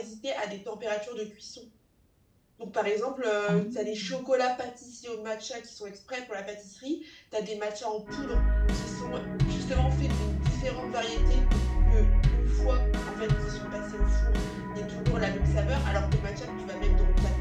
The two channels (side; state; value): both; identical; correlation 1.00